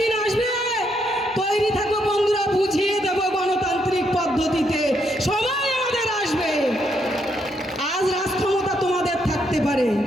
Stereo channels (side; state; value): both; normal; correlation 0.76